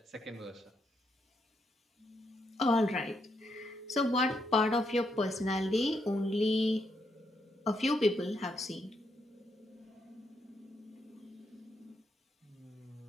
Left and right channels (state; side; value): normal; both; correlation 0.78